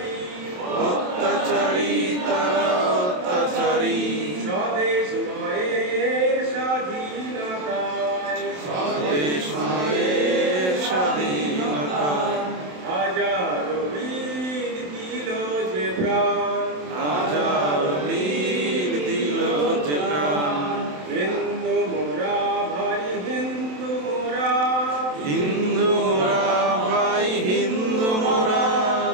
অত্যাচারী তারা অত্যাচারী। স্বদেশ মায়ের স্বাধীনতায়, স্বদেশ মায়ের স্বাধীনতায়। হাজারো বীর দিল যে প্রাণ, হাজার বীর দিল যে প্রাণ। হিন্দু মোরা ভাই হিন্দু মোরা, হিন্দু মোরা ভাই হিন্দু মোরা।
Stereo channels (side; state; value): left; late; 27 ms